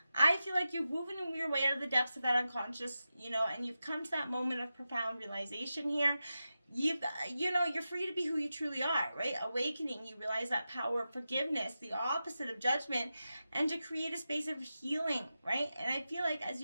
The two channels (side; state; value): both; inverted; correlation -0.91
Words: I feel like you're moving your way out of the depths of that unconscious, and you've come to that moment of profound realization here. You're free to be who you truly are, right? Awakening, you realize that power of forgiveness, the opposite of judgment, and to create a space of healing, right? And I feel like as